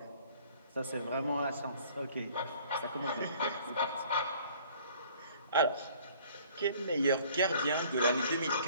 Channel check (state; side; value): inverted; both; correlation -0.54